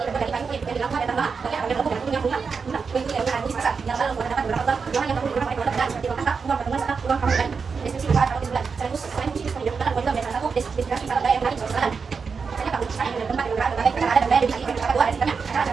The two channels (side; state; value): left; quieter; 5.4 dB